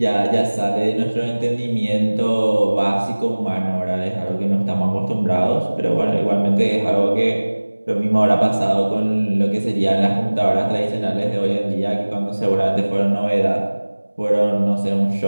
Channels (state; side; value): inverted; both; correlation -1.00